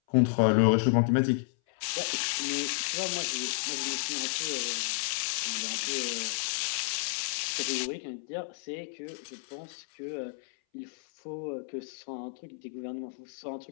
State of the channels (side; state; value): right; silent; 57 dB below the other